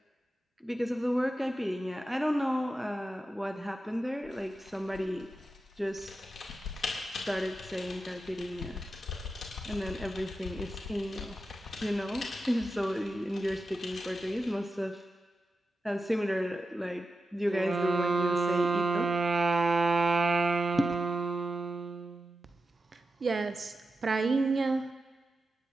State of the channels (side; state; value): both; normal; correlation 0.91